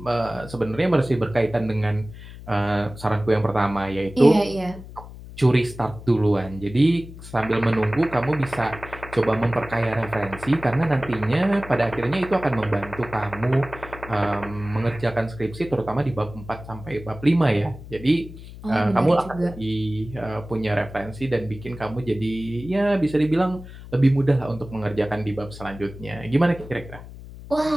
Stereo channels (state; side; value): noise; left; hum, 15 dB below the sound